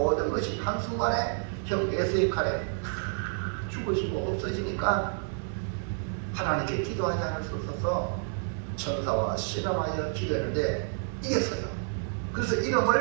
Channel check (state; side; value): silent; left; 58 dB below the other